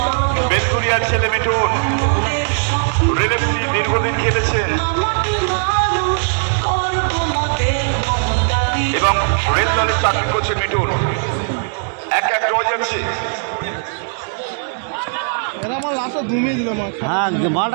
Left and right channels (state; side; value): silent; left; 67 dB below the other